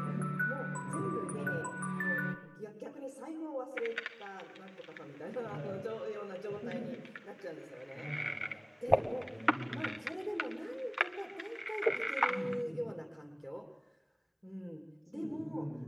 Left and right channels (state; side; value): identical; both; correlation 1.00